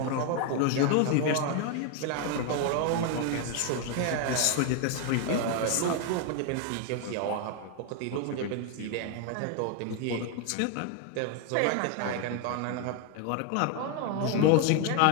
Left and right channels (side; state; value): both; different; correlation 0.01